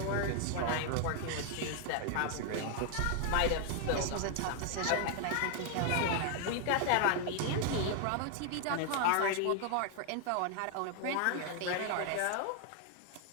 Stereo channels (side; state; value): both; different; correlation 0.00